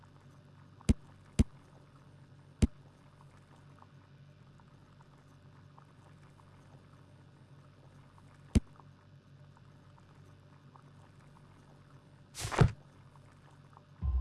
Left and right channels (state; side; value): identical; both; correlation 1.00